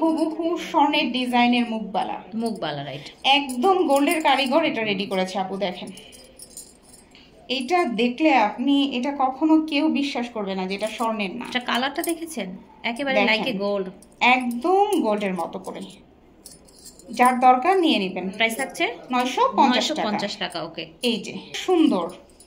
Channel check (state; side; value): identical; both; correlation 1.00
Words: স্বর্ণের ডিজাইনের মুখবালা, রাইট, একদম গোল্ডের কারিগর এটা রেডি করেছে আপু। দেখেন এটা দেখলে আপনি এটা কখনো কেউ বিশ্বাস করবে না যে এটা স্বর্ণের না। এটা কালারটা দেখেছেন, একেবারে লাইক এ গোল্ড, একদম গোল্ডের মতো করে। যার দরকার নিয়ে নেবেন। প্রাইস থাকছে 950 টাকা। ওকে, এই যে সুন্দর